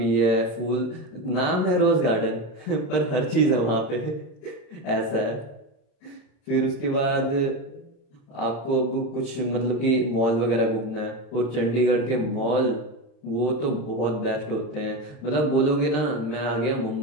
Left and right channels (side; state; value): right; late; 35 ms